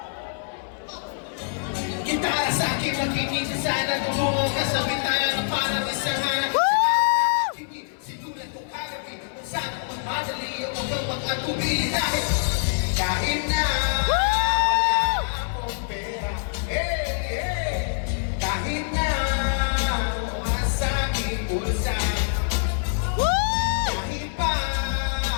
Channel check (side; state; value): right; silent; 61 dB below the other